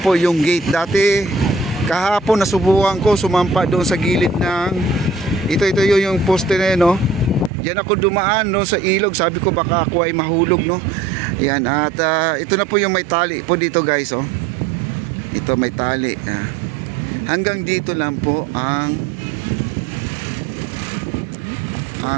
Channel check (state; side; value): drops out; left; at 7.5 s